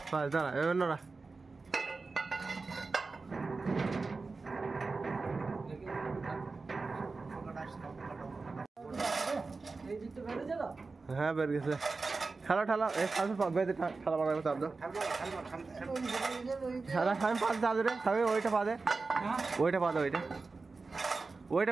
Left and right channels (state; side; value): quieter; left; 4.0 dB